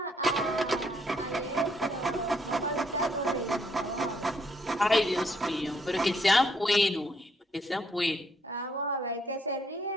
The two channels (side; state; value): both; normal; correlation 0.71